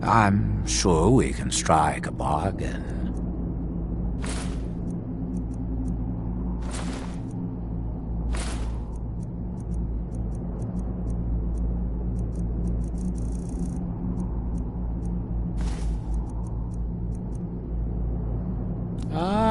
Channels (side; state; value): both; identical; correlation 1.00